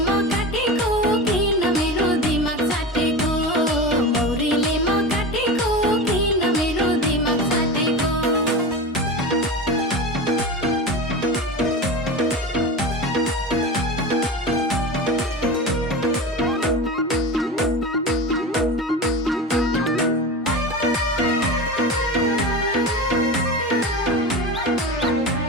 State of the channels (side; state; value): both; normal; correlation 0.27